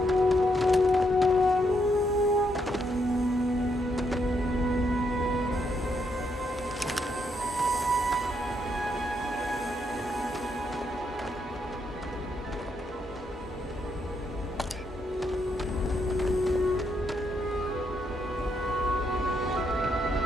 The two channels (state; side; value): normal; both; correlation 0.77